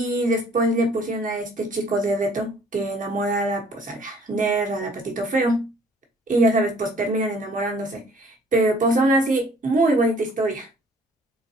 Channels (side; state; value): both; normal; correlation 0.56